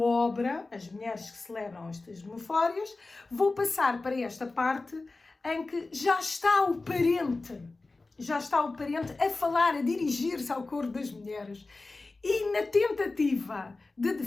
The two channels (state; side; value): quieter; right; 3.4 dB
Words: as mulheres que celebram estas memórias, vou passar para esta parte em que já está o parente a falar, a dirigir-se ao coro das mulheres. E na tentativa de